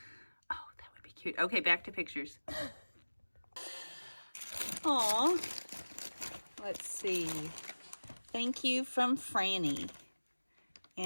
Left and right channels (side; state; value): both; inverted; correlation -1.00